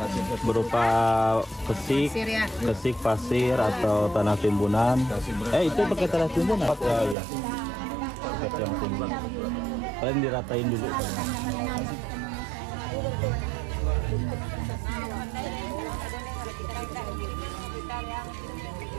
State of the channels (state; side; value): drops out; left; at 7.2 s